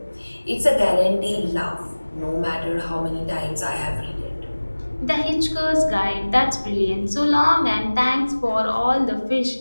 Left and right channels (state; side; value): inverted; both; correlation -1.00